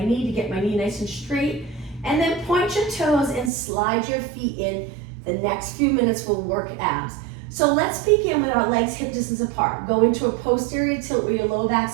knee to get my knee nice and straight. And then point your toes and slide your feet in. The next few minutes will work abs. So let's begin with our legs hip distance apart. Go into a posterior tilt where your low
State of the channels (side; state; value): left; drops out; at 3.5 s